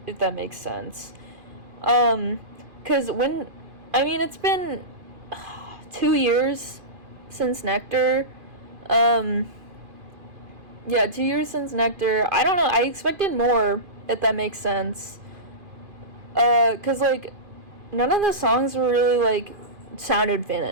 if that makes sense. Cause it's been 2 years since Nectar. 2 years since Nectar. I don't know, I expected more, if that makes sense. Cause, like, none of the songs were really, like, sounded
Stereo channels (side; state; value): left; late; 2.5 ms